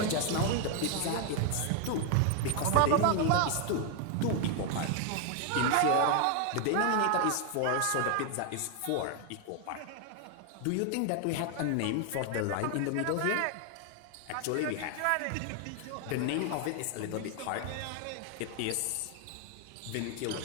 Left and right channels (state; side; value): different; both; correlation 0.00